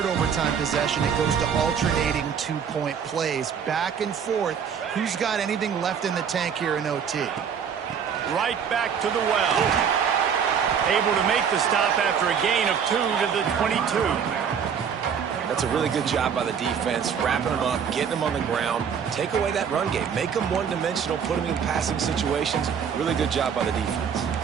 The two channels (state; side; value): quieter; left; 7.3 dB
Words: overtime possession, it goes to alternating 2-point plays. Back and forth. Who's got anything left in the tank here in OT? Right back to the well. Able to make the stop after a gain of 2 to the 22. That's a really good job by the defense, wrapping them up, getting them on the ground. Take away that run game. Make them one-dimensional, put them in passing situations. Really good job by the defense.